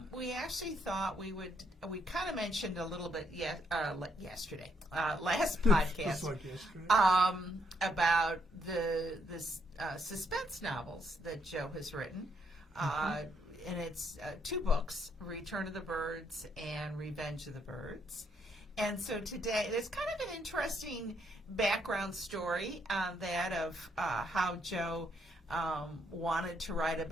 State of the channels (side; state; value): both; normal; correlation 0.73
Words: we actually thought we kind of mentioned a little bit yesterday, last podcast, Just like yesterday. about the suspense novels that Joe has written. And it's two books, Return of the Birds and Revenge of the Birds. And so today, there's kind of an interesting background story on that of how Joe wanted to write